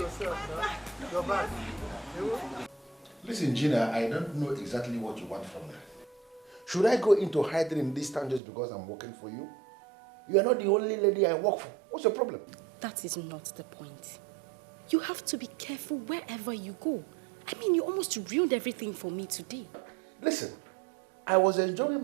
Listen, Gina, I don't know exactly what you want from me. Should I go into hiding in this town just because I'm working for you? You are not the only lady I work for. What's your problem? That is not the point. You have to be careful wherever you go. I mean, you almost ruined everything for me today. Listen, I was enjoying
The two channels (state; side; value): drops out; left; at 8.4 s